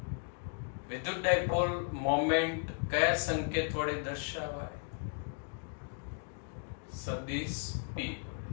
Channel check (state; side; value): quieter; right; 39.4 dB